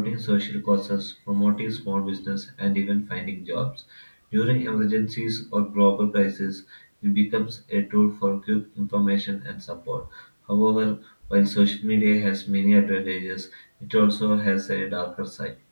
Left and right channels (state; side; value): inverted; both; correlation -1.00